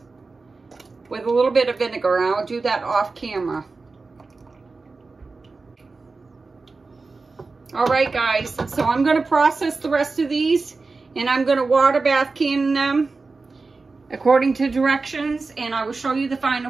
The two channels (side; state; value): left; quieter; 3.9 dB